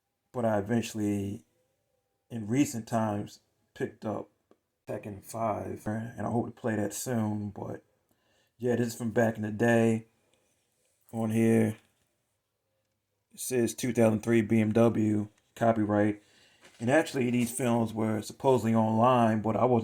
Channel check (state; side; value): identical; both; correlation 1.00